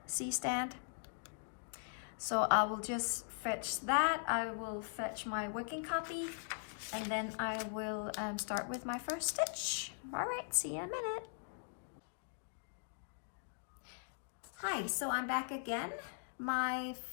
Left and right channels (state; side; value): silent; right; digital silence